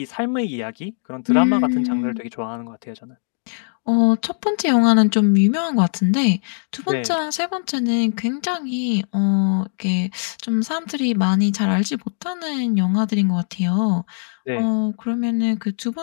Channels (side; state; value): right; silent; digital silence